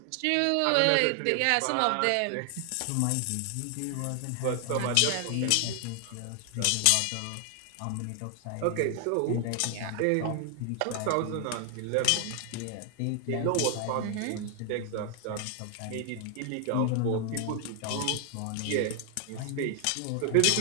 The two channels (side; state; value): both; different; correlation 0.00